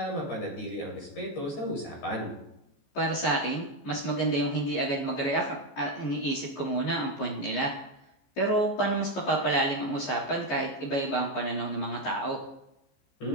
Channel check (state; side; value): late; right; 14 ms